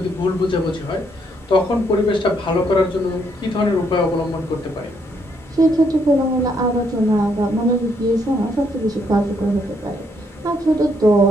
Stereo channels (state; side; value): normal; both; correlation 0.73